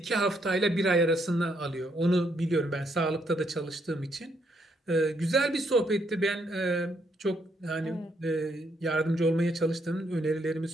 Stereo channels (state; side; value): normal; both; correlation 0.74